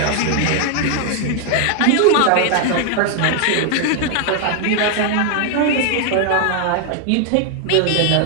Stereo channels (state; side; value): different; both; correlation 0.00